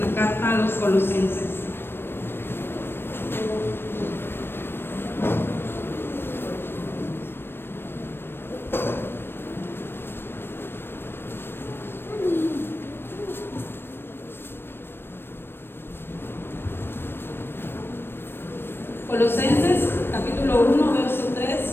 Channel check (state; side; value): late; right; 0.10 ms